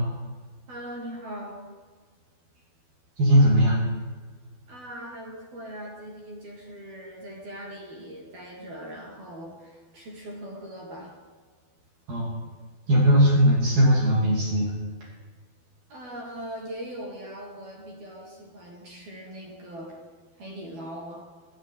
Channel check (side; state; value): left; late; 12 ms